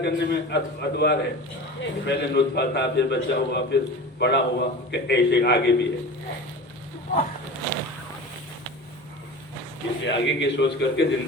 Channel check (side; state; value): both; normal; correlation 0.34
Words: میں ادوار ہے، پہلے نطفہ تھا، پھر بچہ ہوا، پھر بڑا ہوا، کہ ایسے آگے بھی ہے. اس لیے آگے کی سوچ کر کے